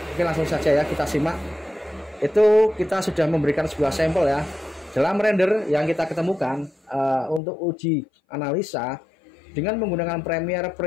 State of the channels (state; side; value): drops out; right; at 7.4 s